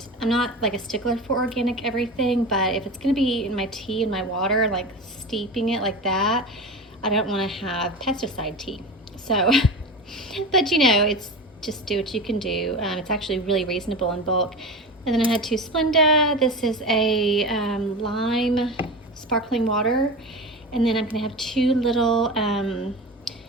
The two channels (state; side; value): normal; both; correlation 0.27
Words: I'm not like a stickler for organic everything, but if it's gonna be in my tea and my water, like steeping it like that, I don't want to have pesticide tea. So, but you know, it's just do what you can do. It's actually really reasonable in bulk. And then I had 2 Splenda. This is a lime sparkling water. And then I'm gonna have 2 little